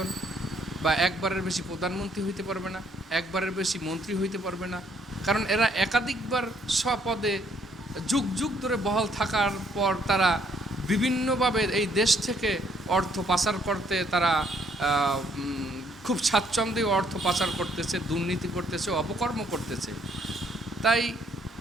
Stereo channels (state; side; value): normal; both; correlation 0.68